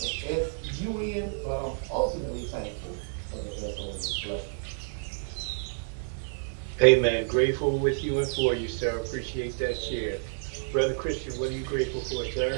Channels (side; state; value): left; silent; 58 dB below the other